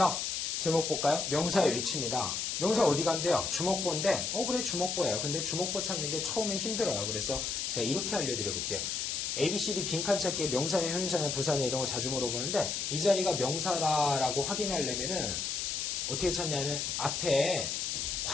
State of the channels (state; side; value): noise; left; hiss, 1 dB below the sound